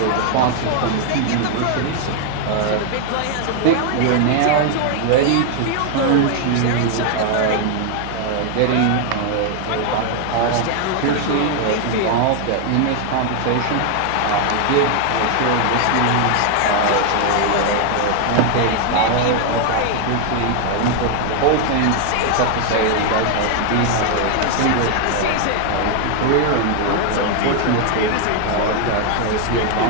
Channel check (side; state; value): both; different; correlation 0.00